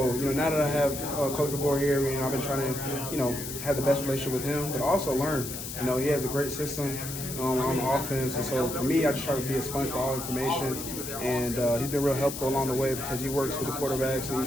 now that I have Coach DeBoer here, I've been trying to have the best relationship with him, but also learn. He has a great system on the offense, and so for me, I just try to be a sponge for all information. And he's been real helpful along the way because he works with the quarterbacks and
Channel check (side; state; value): left; noise; hiss, 8 dB below the sound